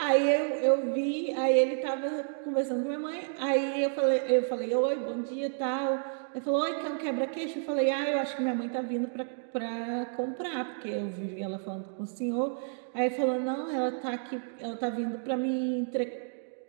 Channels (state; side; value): silent; left; digital silence